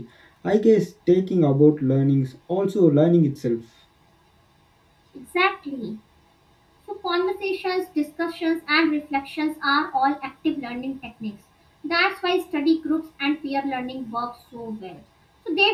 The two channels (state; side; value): identical; both; correlation 1.00